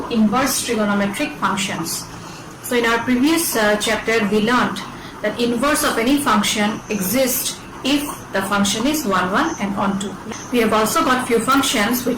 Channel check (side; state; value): both; identical; correlation 1.00